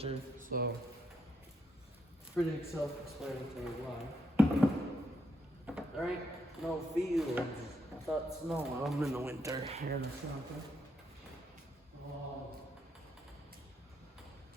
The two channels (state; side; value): normal; both; correlation 0.79